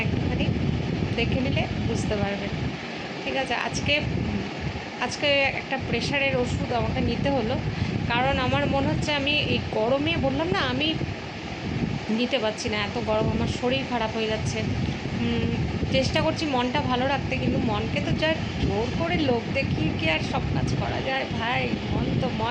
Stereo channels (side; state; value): both; identical; correlation 1.00